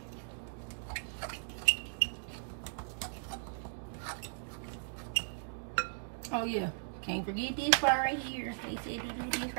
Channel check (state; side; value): silent; left; digital silence